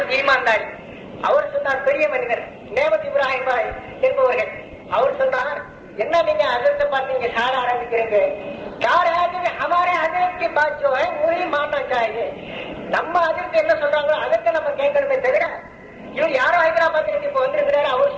ஈமான்தாரி அவர் சொன்னார், பெரிய மனிதர் நேமத் இப்ராஹிம் பாய் என்பவர்கள். அவர் சொன்னார், என்ன நீங்க அதற்கு பார்த்து நீங்க சார ஆரம்பிக்கிறீங்க? हमारे हजरत की बात जो है वही मानना चाहिए. நம்ம அதற்கு என்ன சொல்றாங்களோ அதற்கு நம்ம கேட்கணுமே தவிர, இவர் யாரோ ஹைதராபாத் இப்ப வந்திருக்கிறாரு, அவர்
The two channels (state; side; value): identical; both; correlation 1.00